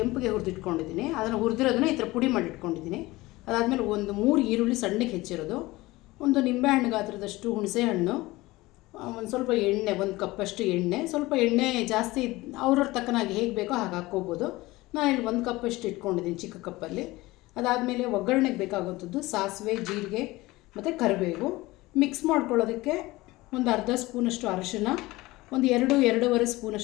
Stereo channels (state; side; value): quieter; right; 19.9 dB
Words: ಹುರಿದಿಟ್ಕೊಂಡಿದ್ದೀನಿ. ಅದನ್ನು ಹುರಿದಿರೋದನ್ನ ಈ ಥರ ಪುಡಿ ಮಾಡಿಟ್ಕೊಂಡಿದ್ದೀನಿ. ಅದಾದಮೇಲೆ ಒಂದು 3 ಈರುಳ್ಳಿ ಸಣ್ಣಗೆ ಹೆಚ್ಚಿರೋದು, ಒಂದು ನಿಂಬೆಹಣ್ಣು ಗಾತ್ರದಷ್ಟು ಹುಣಸೆ ಹಣ್ಣು, ಒಂದು ಸ್ವಲ್ಪ ಎಣ್ಣೆ, 1 ಕಪ್ಪಷ್ಟು ಎಣ್ಣೆ. ಸ್ವಲ್ಪ ಎಣ್ಣೆ ಜಾಸ್ತಿ ಅವ್ರವ್ರ ತಕ್ಕನಾಗಿ ಹೇಗೆ ಬೇಕೋ ಹಾಗೆ ಹಾಕ್ಕೋಬೋದು. ನಾನು ಇಲ್ಲಿ 1 ಕಪ್ಪಷ್ಟು ಇಟ್ಕೊಂಡಿದ್ದೀನಿ ಚಿಕ್ಕ ಕಪ್ಪಲ್ಲಿ. ಅದಾದಮೇಲೆ ಒಗ್ಗರಣೆಗೆ ಬೇಕಾಗುವಂಥದ್ದು ಸಾಸಿವೆ, ಜೀರಿಗೆ ಮತ್ತು ಕರಿಬೇವು. ಮಿಕ್ಸ್ ಮಾಡ್ಕೊಳ್ಳೋದಕ್ಕೆ ಒಂದು ಅರ್ಧ ಸ್ಪೂನಷ್ಟು ಅರಿಶಿನ, ಒಂದು 2-2.5